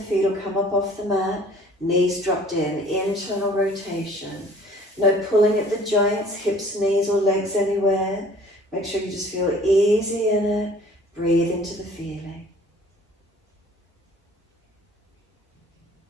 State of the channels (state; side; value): normal; both; correlation 0.51